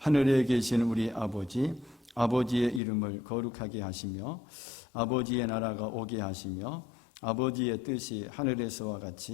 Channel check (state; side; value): drops out; right; at 2.8 s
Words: 계신 우리 아버지, 아버지의 이름을 거룩하게 하시며 아버지의 나라가 오게 하시며 아버지의 뜻이 하늘에서와